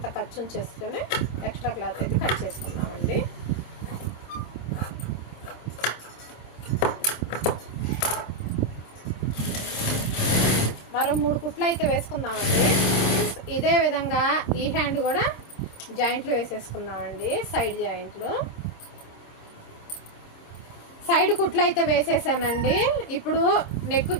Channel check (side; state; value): right; late; 26 ms